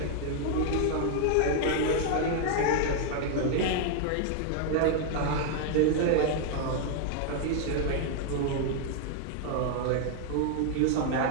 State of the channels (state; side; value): different; both; correlation 0.00